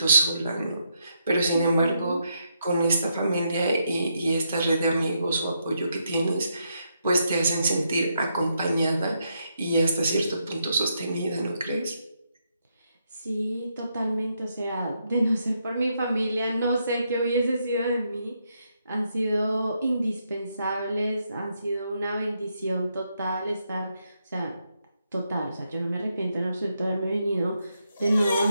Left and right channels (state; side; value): inverted; both; correlation -0.79